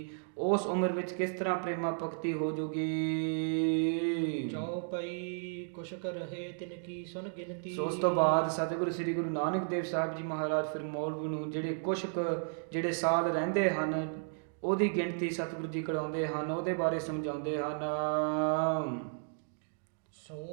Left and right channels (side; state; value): left; silent; digital silence